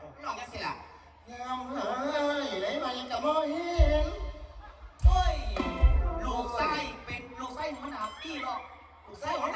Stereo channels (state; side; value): identical; both; correlation 1.00